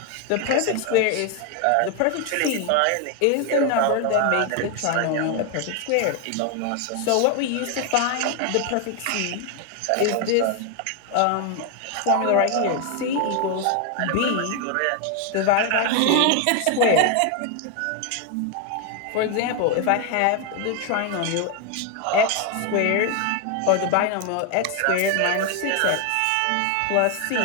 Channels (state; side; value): different; both; correlation 0.01